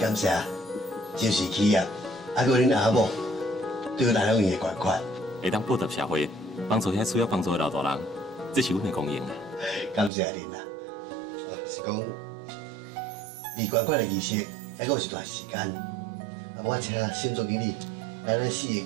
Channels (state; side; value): drops out; left; at 10.1 s